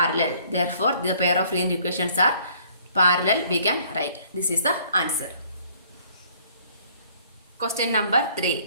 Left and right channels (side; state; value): both; inverted; correlation -0.59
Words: Therefore the pair of linear equations are parallel, we can write. This is the answer. Question number